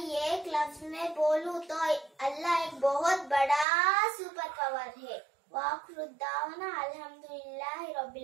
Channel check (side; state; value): left; drops out; at 3.7 s